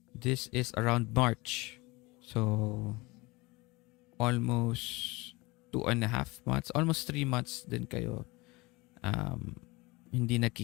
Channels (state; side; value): quieter; right; 23.6 dB